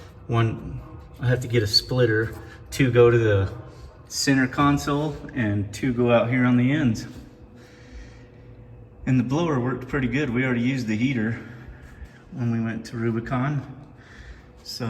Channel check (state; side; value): identical; both; correlation 1.00